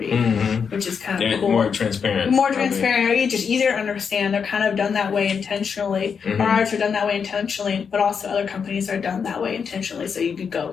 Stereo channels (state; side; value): quieter; right; 6.4 dB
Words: which is kind of cool. More transparent. Just easier to understand. They're kind of done that way intentionally. Ours are done that way intentionally, but also other companies are done that way intentionally. So you could